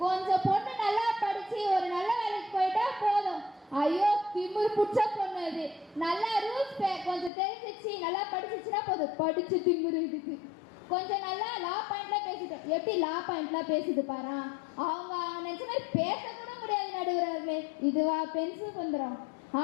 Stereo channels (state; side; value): drops out; right; at 7.3 s